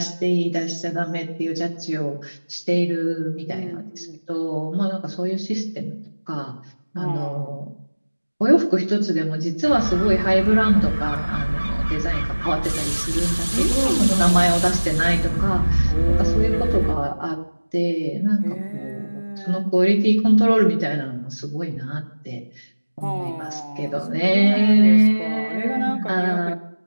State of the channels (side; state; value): both; inverted; correlation -1.00